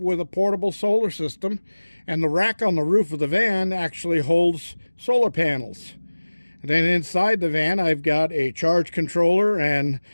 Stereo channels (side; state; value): both; inverted; correlation -1.00